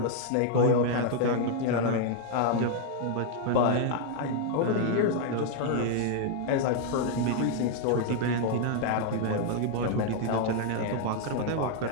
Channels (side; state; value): both; different; correlation 0.00